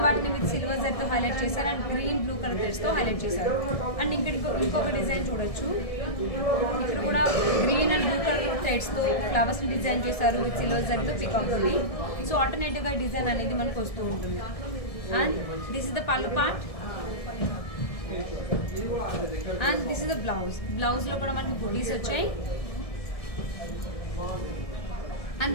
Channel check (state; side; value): late; right; 1.7 ms